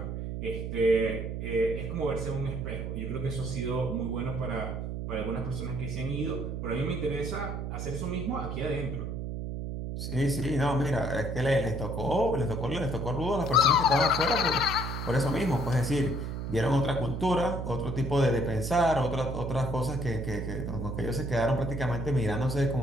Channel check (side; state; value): right; noise; hum, 4 dB below the sound